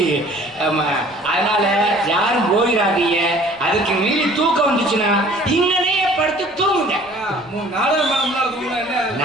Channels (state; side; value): noise; left; rumble, 27 dB below the sound